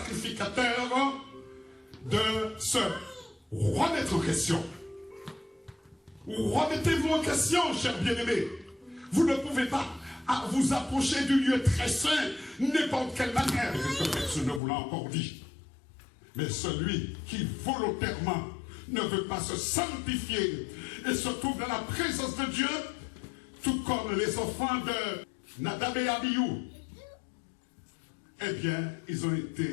de se remettre en question. Remettez-vous en question, chers bien-aimés. Vous ne pouvez pas vous approcher du lieu très saint n'importe quelle manière. Et que personne ne vous l'a encore dit. Mais celui qui volontairement ne veut pas se sanctifier et se trouve dans la présence de Dieu, tout comme les enfants de Nadab et Abihu, eh bien, ils ont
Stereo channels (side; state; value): right; drops out; at 14.6 s